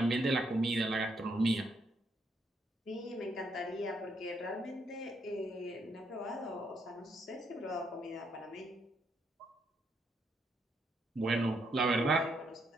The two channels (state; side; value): normal; both; correlation 0.75